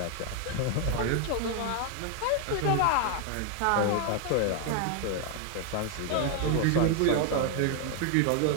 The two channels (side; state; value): both; different; correlation 0.00